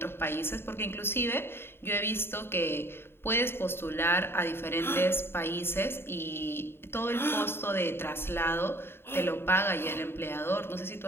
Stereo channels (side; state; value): right; late; 0.11 ms